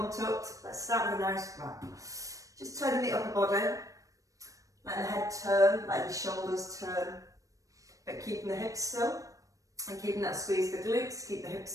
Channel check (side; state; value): left; late; 0.16 ms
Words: tucked. Let's start with a nice wrap. Just turning the upper body, letting the head turn, letting the shoulders turn, but keeping the hips still and keeping that squeeze the glutes, keep the